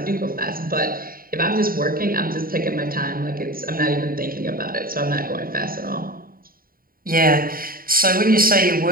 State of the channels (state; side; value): late; left; 0.42 ms